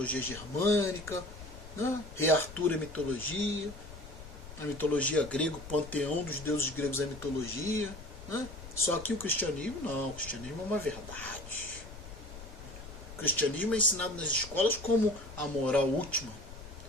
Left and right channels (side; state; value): left; noise; rumble, 14 dB below the sound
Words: germânica, né? Rei Arthur é mitologia, a mitologia grega, o panteão dos deuses gregos é mitologia, né? Só que o cristianismo não, o cristianismo é uma verdade. O cristianismo é ensinado nas escolas como a moral última,